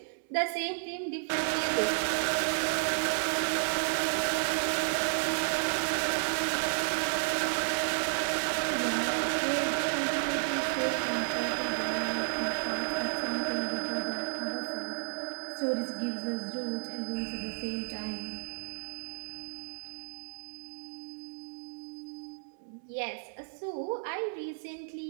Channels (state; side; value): silent; left; digital silence